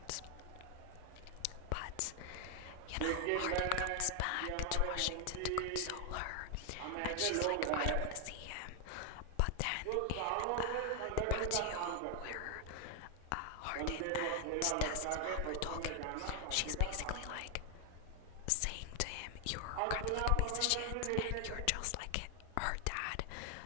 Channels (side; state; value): both; different; correlation 0.00